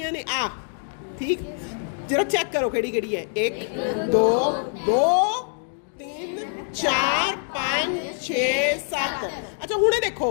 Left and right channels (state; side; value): silent; right; 62 dB below the other